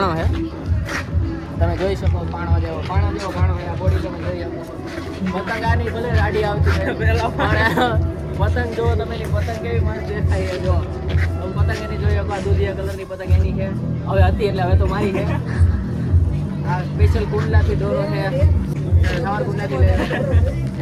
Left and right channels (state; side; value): identical; both; correlation 1.00